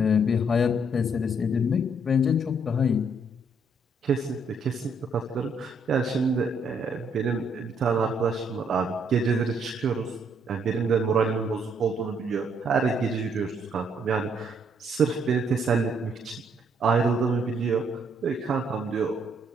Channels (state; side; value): normal; both; correlation 0.70